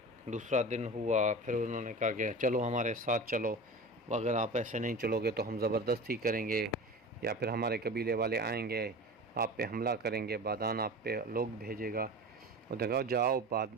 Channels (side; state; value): both; normal; correlation 0.33